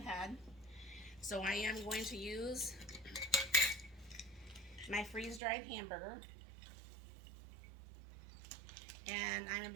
So I am going to use my freeze-dried hamburger. And I'm going to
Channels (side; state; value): left; drops out; at 5.4 s